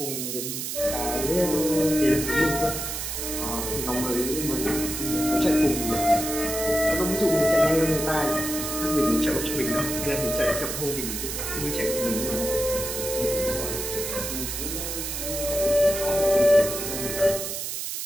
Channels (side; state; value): right; noise; hiss, 4 dB below the sound